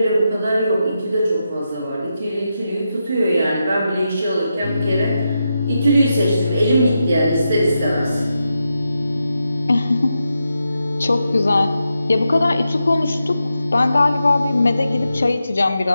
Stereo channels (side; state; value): both; inverted; correlation -0.87